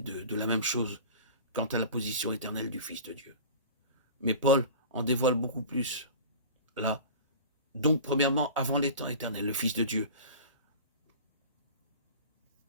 de la même chose quant à la position éternelle du Fils de Dieu. Mais Paul en dévoile beaucoup plus. Là, donc premièrement, avant les temps éternels, le Fils de Dieu,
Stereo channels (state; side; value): inverted; both; correlation -0.37